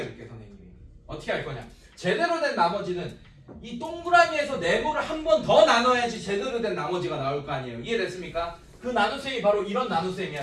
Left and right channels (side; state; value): both; identical; correlation 1.00